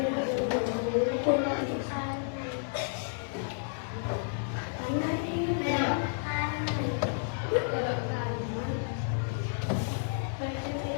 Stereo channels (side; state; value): right; silent; digital silence